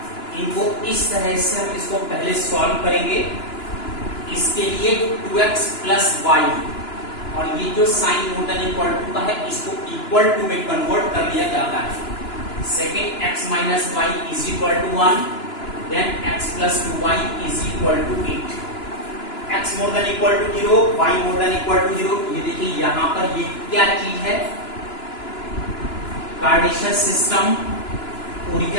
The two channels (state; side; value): late; right; 2.9 ms